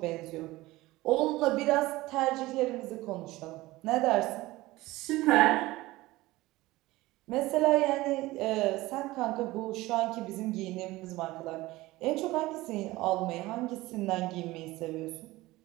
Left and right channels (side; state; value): left; quieter; 19.0 dB